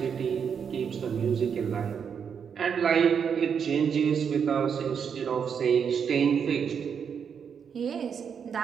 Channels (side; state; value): left; quieter; 7.1 dB